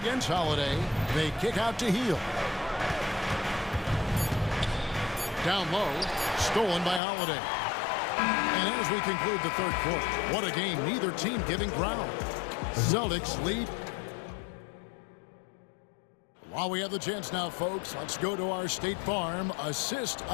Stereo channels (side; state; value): right; drops out; at 7.0 s